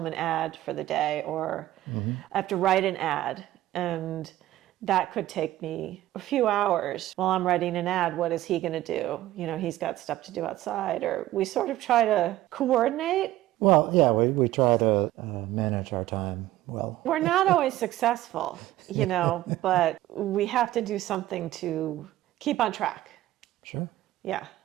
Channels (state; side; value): quieter; left; 15.0 dB